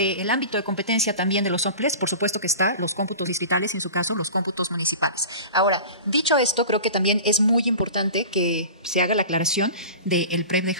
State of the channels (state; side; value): inverted; both; correlation -0.36